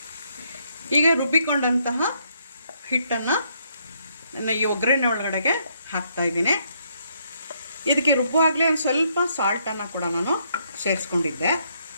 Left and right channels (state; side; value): inverted; both; correlation -0.72